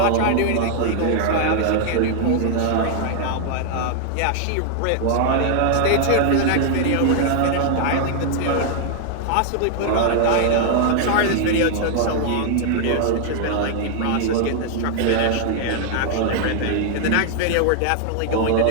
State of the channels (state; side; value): different; both; correlation 0.00